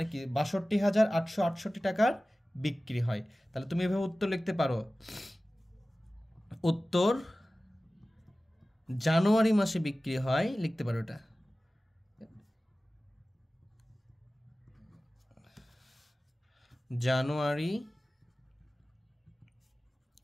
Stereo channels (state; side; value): normal; both; correlation 0.96